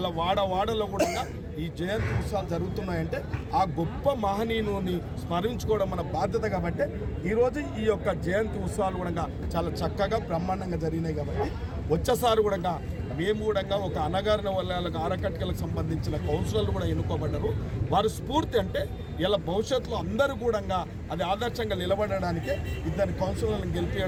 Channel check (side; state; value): both; identical; correlation 1.00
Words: వాడవాడలో కూడా ఈ జయంతి ఉత్సవాలు జరుగుతున్నాయంటే ఆ గొప్ప మహనీయుని స్మరించుకోవడం మన బాధ్యత. కాబట్టి ఈరోజు ఈ యొక్క జయంతి ఉత్సవాలు కూడా చాలా చక్కగా బ్రహ్మాండంగా జరిగినాయి. కాబట్టి వచ్చేసారి కూడా మేము కూడా ఒక అనగారిన వర్గాలకు, ఆరకట్కలకు సంబంధించిన కౌన్సిలర్లు కూడా ఎన్నుకోబడ్డారు. వారి స్ఫూర్తి అంటే ఇలా భవిష్యత్తులో అందరూ కూడా అది ఆదర్శంగా నిలబడడానికే ఇద్దరు కౌన్సిలర్లను